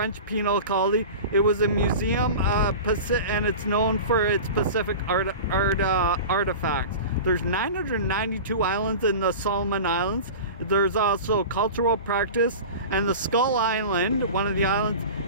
penal colony. It was a museum, and it's known for its Pacific artifacts. There's 992 islands in the Solomon Islands. There's also cultural practice, and the Skull Island, one of the islands,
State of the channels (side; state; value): both; inverted; correlation -0.33